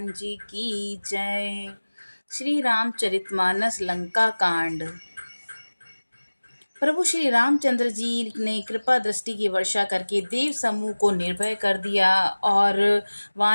जी की जय। श्री रामचरितमानस लंका कांड। प्रभु श्री रामचंद्र जी ने कृपा दृष्टि की वर्षा करके देव समूह को निर्भय कर दिया और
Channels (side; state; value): both; inverted; correlation -1.00